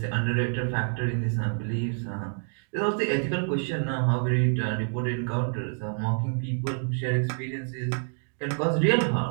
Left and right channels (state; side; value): silent; left; 60 dB below the other